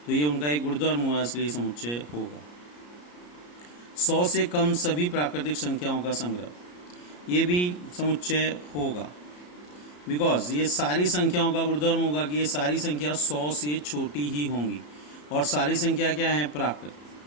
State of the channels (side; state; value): right; late; 34 ms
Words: तो ये उनका एक गुणधर्म हुआ, इसलिए समुच्चय होगा। 100 से कम सभी प्राकृतिक संख्याओं का संग्रह, ये भी समुच्चय होगा, बिकॉज ये सारी संख्याओं का गुणधर्म होगा कि ये सारी संख्या 100 से छोटी ही होंगी, और सारी संख्या क्या है, प्राकृत,